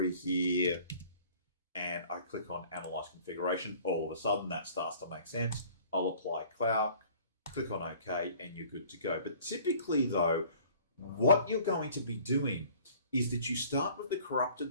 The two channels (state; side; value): inverted; both; correlation -0.51